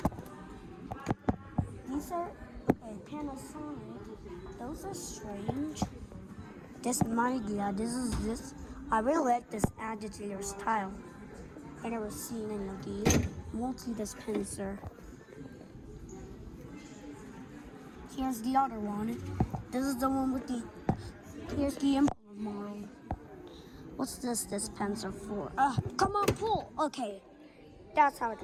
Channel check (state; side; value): identical; both; correlation 1.00